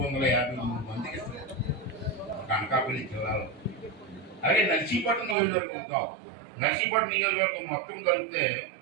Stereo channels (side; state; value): left; drops out; at 5.4 s